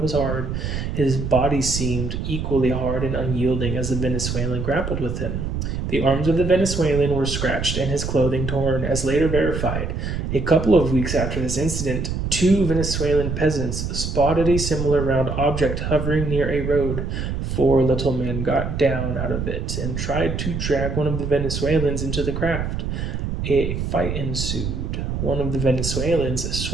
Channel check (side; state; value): right; noise; rumble, 3 dB below the sound